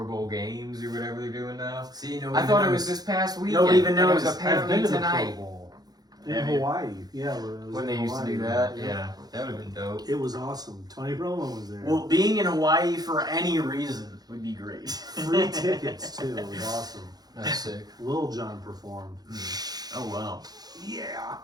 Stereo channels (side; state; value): left; late; 0.19 ms